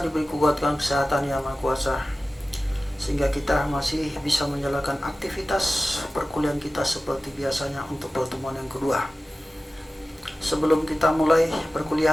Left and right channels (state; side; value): normal; both; correlation 0.96